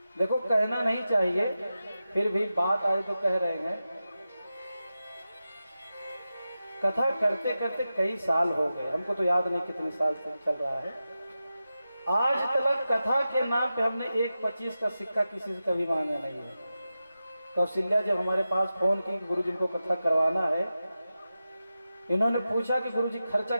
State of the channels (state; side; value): inverted; both; correlation -0.92